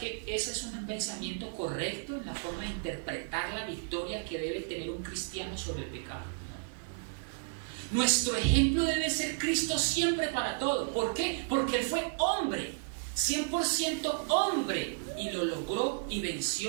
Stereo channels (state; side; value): silent; left; 56 dB below the other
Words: ese es un pensamiento correcto en la forma de interpretar la victoria que debe tener un cristiano sobre el pecado? Nuestro ejemplo debe ser Cristo siempre para todo. ¿Por qué? Porque Él fue hombre, 100% hombre, y lo logró y